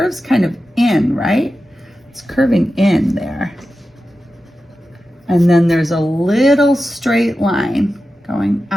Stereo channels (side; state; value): both; normal; correlation 0.92